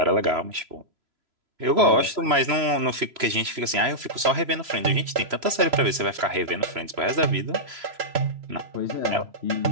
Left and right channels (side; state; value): left; late; 3.0 ms